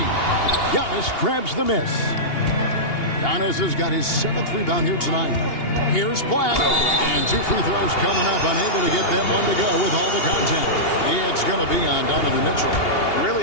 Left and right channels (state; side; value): late; right; 2.8 ms